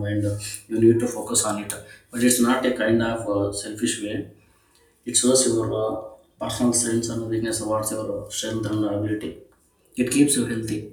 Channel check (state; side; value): identical; both; correlation 1.00